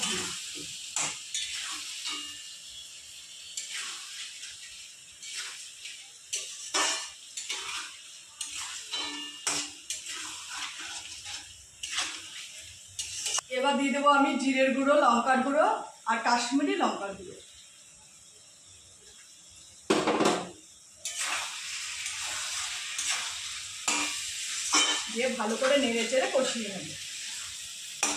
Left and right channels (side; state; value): both; identical; correlation 1.00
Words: ঘি। এবার দিয়ে দেবো আমি জিরের গুঁড়ো, লঙ্কার গুঁড়ো আর কাশ্মীরি লঙ্কার গুঁড়ো। দিয়ে ভালো করে নেড়ে চেড়ে কষিয়ে নেব।